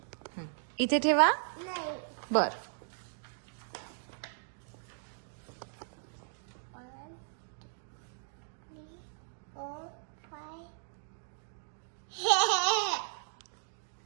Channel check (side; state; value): left; silent; digital silence